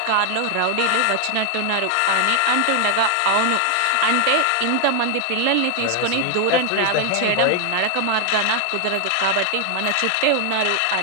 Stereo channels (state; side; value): different; both; correlation 0.00